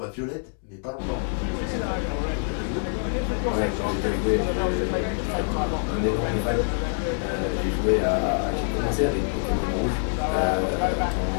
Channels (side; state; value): right; silent; digital silence